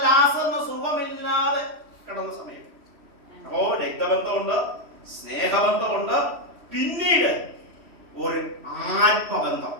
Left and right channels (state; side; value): late; left; 3.1 ms